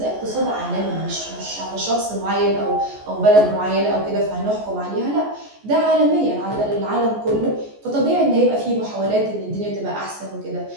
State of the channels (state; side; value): late; left; 14 ms